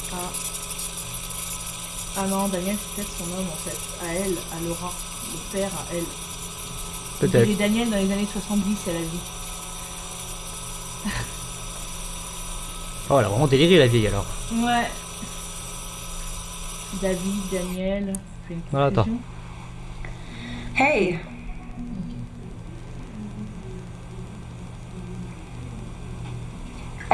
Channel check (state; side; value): identical; both; correlation 1.00